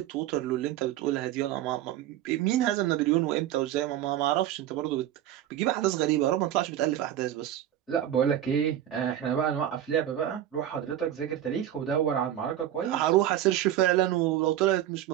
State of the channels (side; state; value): left; quieter; 11.8 dB